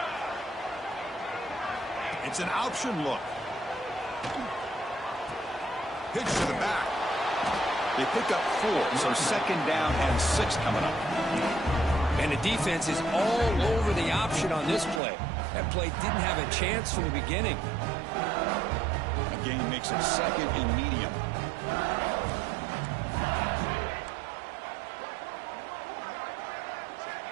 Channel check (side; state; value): left; drops out; at 15.0 s